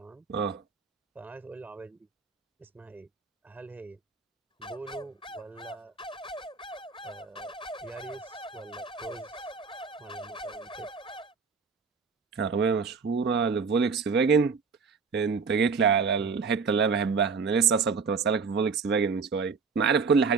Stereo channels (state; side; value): quieter; left; 5.2 dB